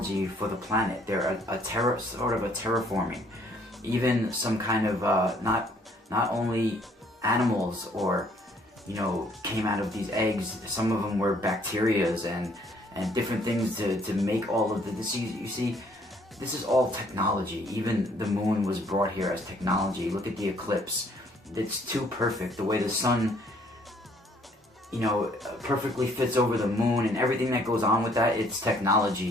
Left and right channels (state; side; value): normal; both; correlation 0.63